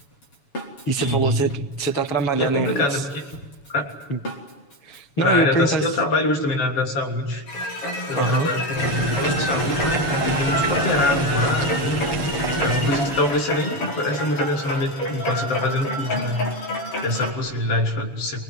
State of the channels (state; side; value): late; right; 7.1 ms